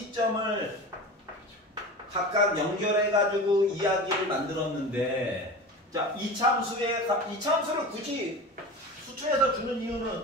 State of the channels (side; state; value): both; normal; correlation 0.32